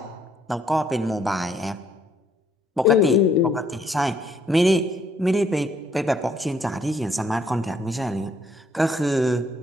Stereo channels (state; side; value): normal; both; correlation 0.68